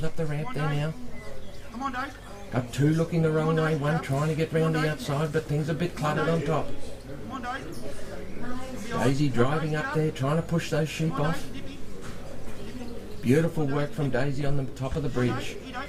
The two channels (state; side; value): identical; both; correlation 1.00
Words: up the ramp there now. Got two looking the wrong way, one trying to get round the outside, but things are a bit cluttered on top. Daisy driving up there, trying to push those sheep off. Beautiful work from Daisy on the top of the bridge.